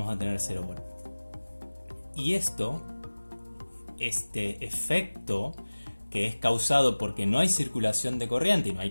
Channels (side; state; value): both; inverted; correlation -1.00